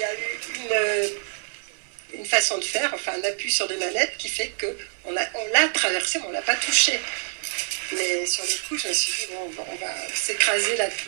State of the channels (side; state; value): left; silent; 60 dB below the other